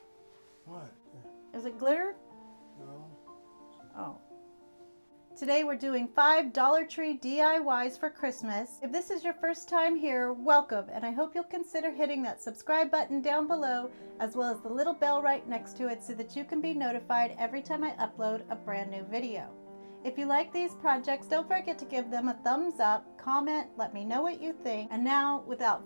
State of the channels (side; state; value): both; inverted; correlation -1.00